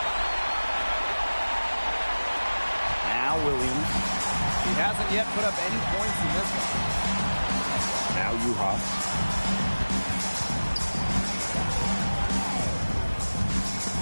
Now Williams. He hasn't yet put up any points in this one. Now Uhas.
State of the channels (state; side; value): inverted; both; correlation -1.00